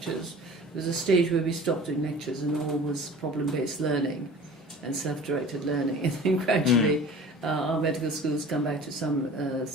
There was a stage where we stopped doing lectures and all was problem-based learning and self-directed learning, and then gradually our medical schools come back to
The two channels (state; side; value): normal; both; correlation 0.42